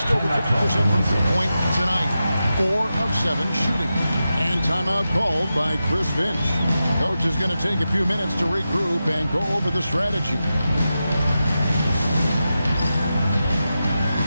over 50% from three-point tonight. 4 of 7 shooting. And timeout called by Chris Finch. Coach is going to take a few minutes to regroup and go over the strategy.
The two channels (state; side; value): inverted; both; correlation -0.91